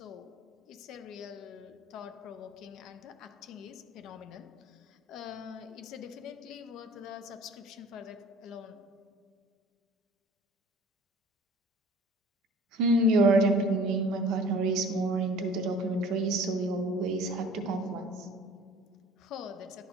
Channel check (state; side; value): normal; both; correlation 0.48